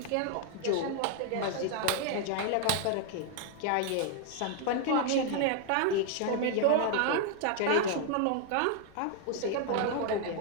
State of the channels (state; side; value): different; both; correlation 0.00